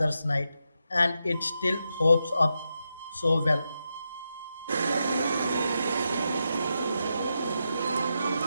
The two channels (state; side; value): inverted; both; correlation -0.85